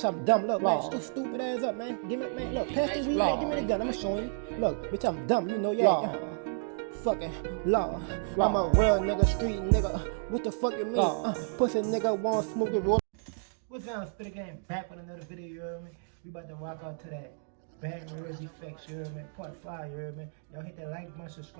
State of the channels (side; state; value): left; silent; digital silence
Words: I'm dumb. Look, man, shut your stupid ass up, man. Give me, man, look, pass the weed, man, give me the gun. I'ma show you. Look, bitch, I'm dumb. You know, yeah. Fucking Lord, I'm a real nigga, street nigga. What the fuck you mean? Pussy nigga want smoke it roll. What's down, Spit Game? Back with another video, you heard me? We about to rock out to that Baton Rouge effects, you heard me? Part 5, you heard me? Y'all hit that like button,